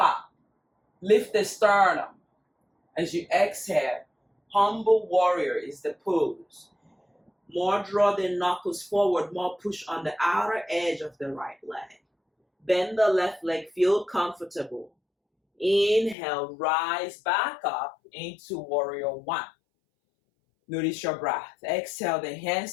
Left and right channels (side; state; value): right; drops out; at 16.2 s